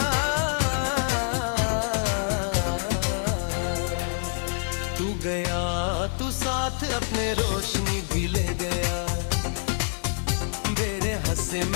तू गया तू साथ अपने रोशनी भी ले गया। मेरे हंसे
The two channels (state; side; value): silent; right; 61 dB below the other